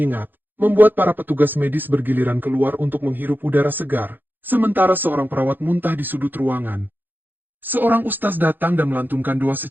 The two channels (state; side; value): late; left; 0.090 ms